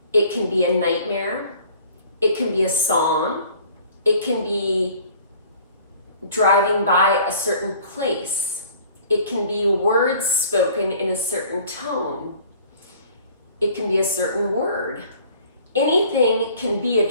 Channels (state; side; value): inverted; both; correlation -0.51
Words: It can be a nightmare. It can be a song. It can be driving by a certain place. It can be words spoken in a certain tone. It can be a certain word. Anything can be a